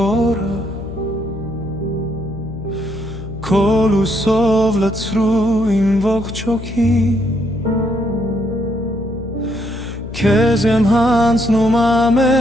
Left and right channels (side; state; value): left; noise; hum, 10 dB below the sound